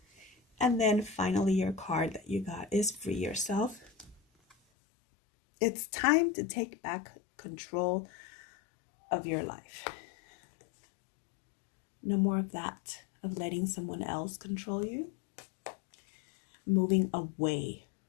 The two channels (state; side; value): drops out; right; at 4.5 s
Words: And then finally, your card that you got is free yourself. It's time to take back control of your life. No more of that, of letting someone else control you. Moving away